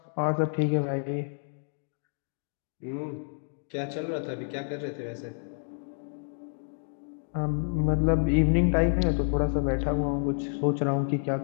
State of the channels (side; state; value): right; silent; digital silence